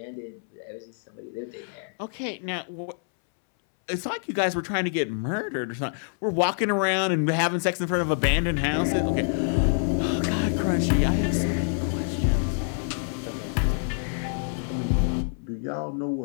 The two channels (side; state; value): right; silent; 61 dB below the other